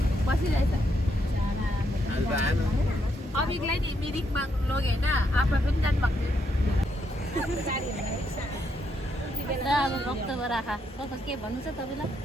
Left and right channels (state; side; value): normal; both; correlation 0.77